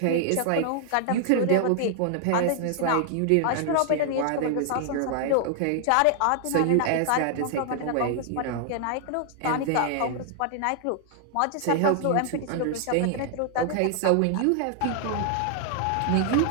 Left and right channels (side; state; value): both; different; correlation 0.00